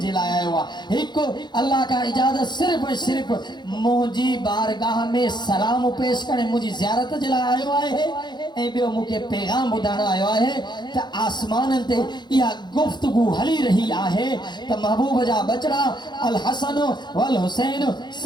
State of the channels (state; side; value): late; right; 0.21 ms